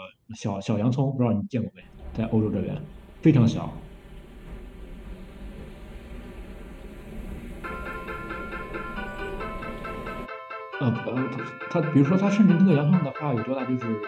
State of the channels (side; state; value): both; identical; correlation 1.00